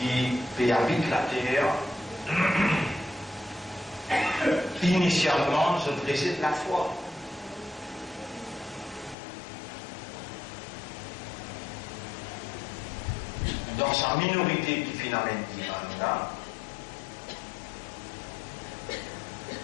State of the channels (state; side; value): drops out; right; at 9.2 s